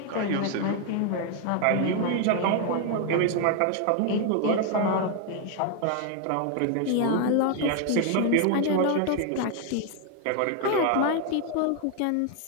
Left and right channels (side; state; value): both; different; correlation 0.01